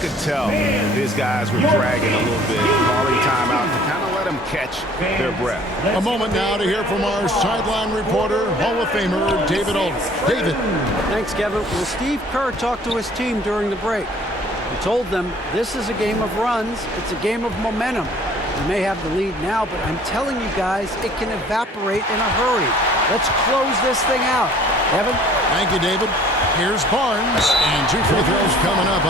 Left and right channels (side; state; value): both; normal; correlation 0.53